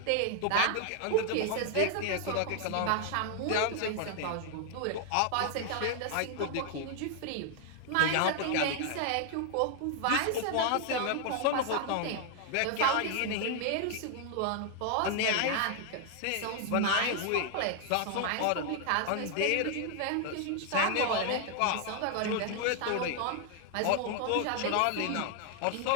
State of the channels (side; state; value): both; different; correlation 0.00